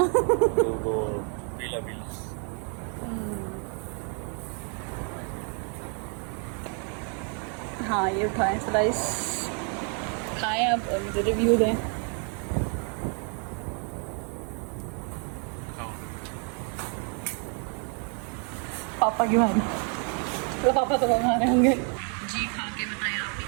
वो पीला पीला। हाँ ये उठाएं स्लाइस, खाएं अब और मुझे रिव्यू दें। पापा की मारी तो पापा तो हमारे होंगे जी। खा के बताएं आप भी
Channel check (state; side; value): quieter; left; 40.0 dB